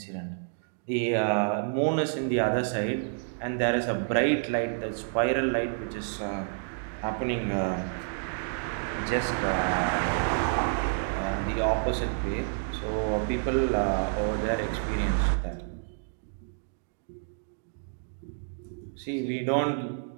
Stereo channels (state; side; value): silent; left; digital silence